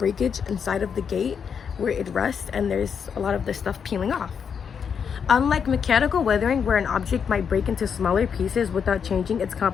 inside of the gate where it rusts, and there's a lot of the stuff peeling off. Unlike mechanical weathering, where an object might break into smaller pieces without changing its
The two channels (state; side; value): quieter; right; 6.9 dB